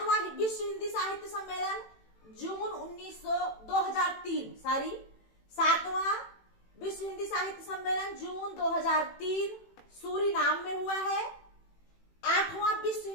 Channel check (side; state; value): right; late; 18 ms